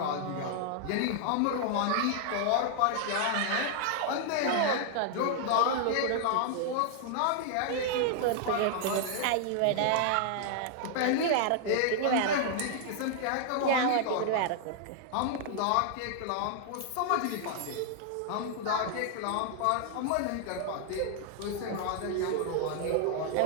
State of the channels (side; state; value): both; different; correlation 0.00